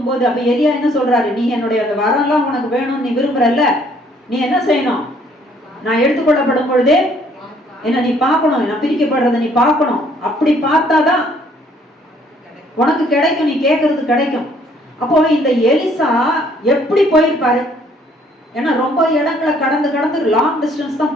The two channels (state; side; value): normal; both; correlation 0.63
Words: போது அப்ப எலியா என்ன சொல்றாரு? நீ என்னுடைய அந்த வரம்லாம் உனக்கு வேணும்னு நீ விரும்புறல்ல, நீ என்ன செய்யணும்? நான் எடுத்துக்கொள்ளப்படும் பொழுதே என்ன நீ பார்க்கணும், நான் பிரிக்கப்படுறத நீ பார்க்கணும். அப்படி பார்த்தாதான் உனக்கு கிடைக்கும், நீ கேட்கறது கிடைக்கும். அப்போ இந்த எலிசா எப்படி போயிருப்பாரு? ஏன்னா ரொம்ப இடங்களை கடந்து லாங் டிஸ்டன்ஸ் தான்